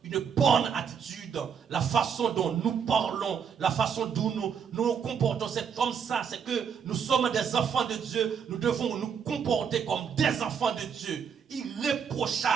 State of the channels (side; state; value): left; quieter; 7.1 dB